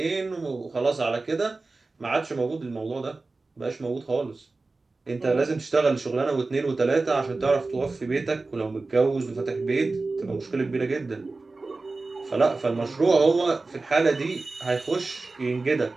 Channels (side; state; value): left; quieter; 3.5 dB